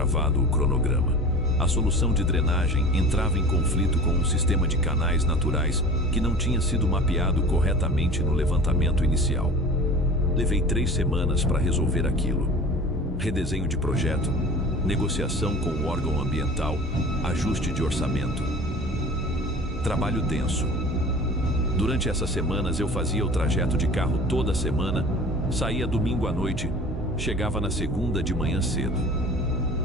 o cronograma. A solução de drenagem entrava em conflito com um sistema de canais naturais que não tinha sido mapeado corretamente no levantamento inicial. Levei 3 semanas para resolver aquilo. Redesenho de projeto, negociação com o órgão ambiental, ajuste de orçamento. Trabalho denso. Durante essas semanas eu fazia o trajeto de carro toda semana, saía domingo à noite, chegava na segunda de manhã cedo.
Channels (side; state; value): both; normal; correlation 0.40